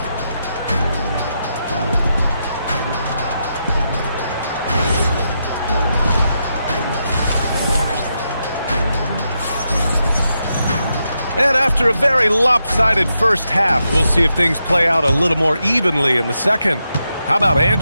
And after a very lopsided first half, we'll see if things play out a little more evenly in the second. How about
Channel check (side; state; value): both; inverted; correlation -0.84